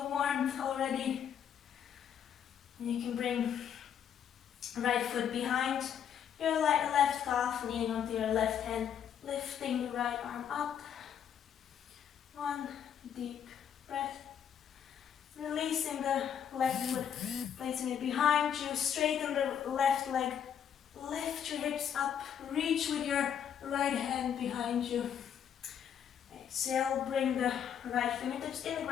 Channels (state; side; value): quieter; right; 8.7 dB